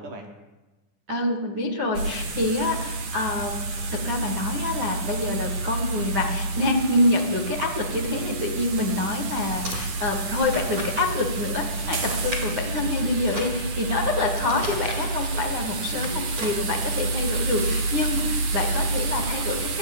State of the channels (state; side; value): late; left; 10 ms